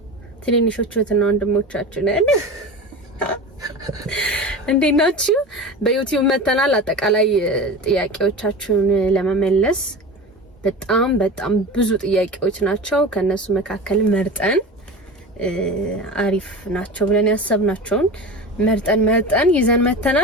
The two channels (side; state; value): both; normal; correlation 0.30